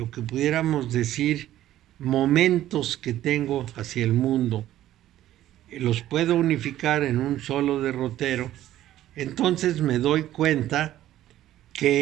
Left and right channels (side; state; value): left; quieter; 13.3 dB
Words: que pudiéramos decir momentos que tengo hacia el mundo, los puedo unificar en un solo derrotero, entonces me doy cuenta